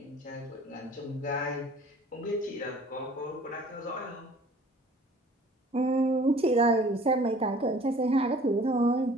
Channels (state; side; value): normal; both; correlation 0.51